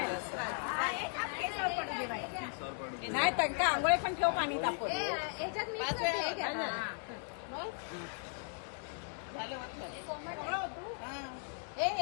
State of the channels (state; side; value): silent; right; 53 dB below the other